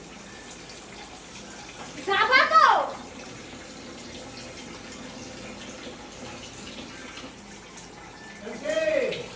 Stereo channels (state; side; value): identical; both; correlation 1.00